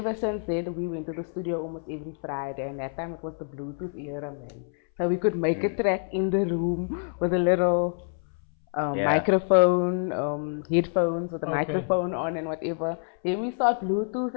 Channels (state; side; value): silent; right; 60 dB below the other